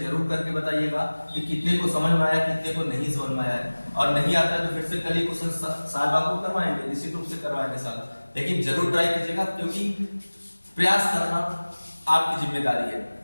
करके बताइएगा कि कितने को समझ में आया, कितने को नहीं समझ में आया है, और नहीं आता है तो फिर से कल ही क्वेश्चन साल बाबू करवाएंगे, निश्चित रूप से करवाएंगे साल, लेकिन जरूर ट्राई कीजिएगा, क्योंकि प्रयास करना आपकी जिम्मेदारी है।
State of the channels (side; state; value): both; inverted; correlation -1.00